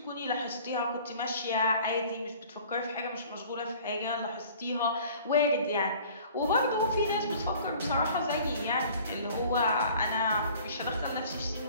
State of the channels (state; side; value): inverted; both; correlation -0.49